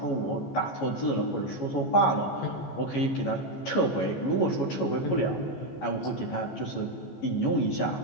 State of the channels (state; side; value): late; right; 14 ms